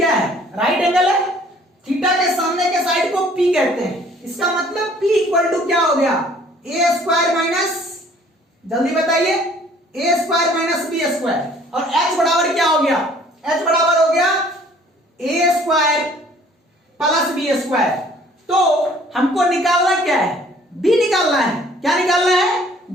है, राइट एंगल है। थीटा के सामने के साइड को पी कहते हैं, इसका मतलब पी इक्वल टू क्या हो गया, ए स्क्वायर माइनस, जल्दी बताइए, ए स्क्वायर माइनस बी स्क्वायर। और एच बराबर क्या हो गया, एच बराबर हो गया ए स्क्वायर प्लस बी स्क्वायर। तो हमको निकालना क्या है, बी निकालना है। क्या निकालना है,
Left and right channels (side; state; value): both; normal; correlation 0.56